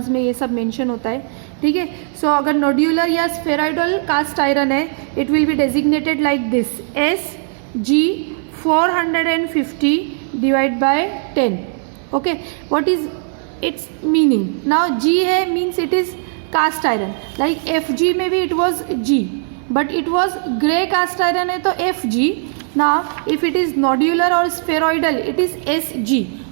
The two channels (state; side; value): silent; left; 67 dB below the other